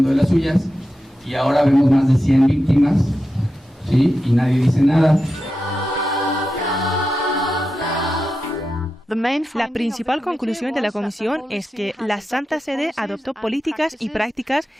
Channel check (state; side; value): normal; both; correlation 0.90